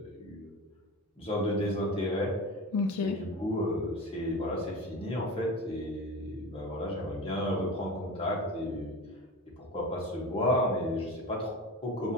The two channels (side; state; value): both; normal; correlation 0.30